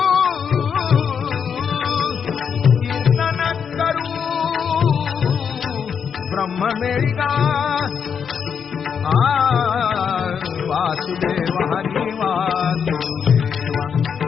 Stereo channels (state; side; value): quieter; right; 7.0 dB